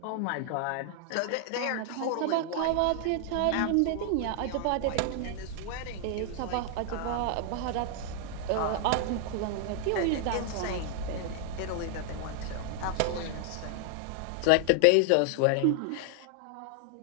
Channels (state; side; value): different; both; correlation 0.00